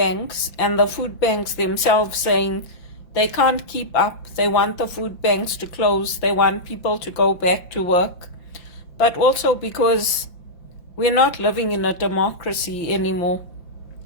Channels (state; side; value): late; right; 5.9 ms